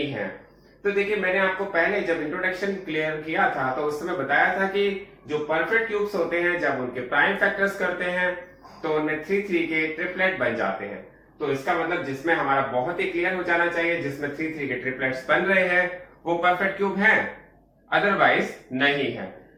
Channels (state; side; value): identical; both; correlation 1.00